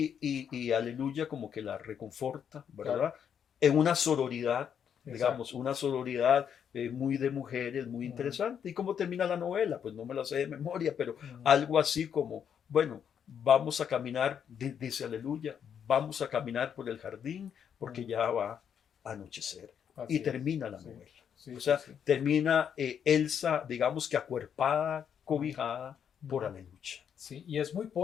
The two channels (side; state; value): right; quieter; 8.1 dB